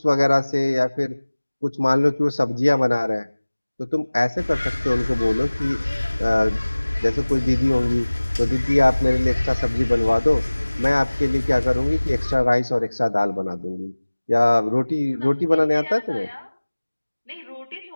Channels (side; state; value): both; inverted; correlation -1.00